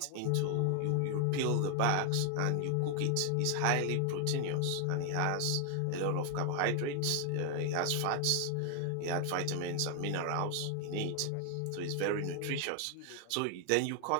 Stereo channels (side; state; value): both; different; correlation 0.01